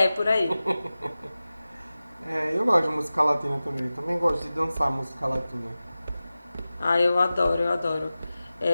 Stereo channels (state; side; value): inverted; both; correlation -0.96